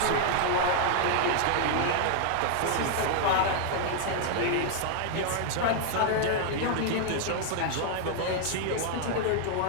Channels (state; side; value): different; both; correlation 0.00